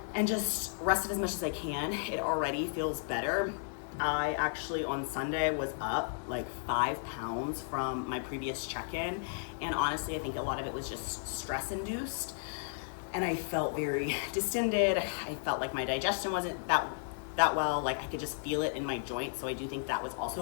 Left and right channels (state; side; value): silent; right; digital silence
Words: And just rest it as much as I can. It already feels better. I actually on Sunday was up like 5 pounds from my previous check-in, and honestly I think a lot of it was just stress induced, and I felt very distended. I felt like my digestion wasn't that well, like I could just feel it in my joints, so I do think that was